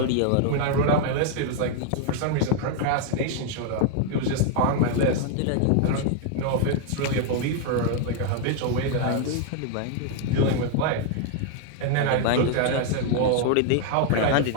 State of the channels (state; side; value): different; both; correlation 0.00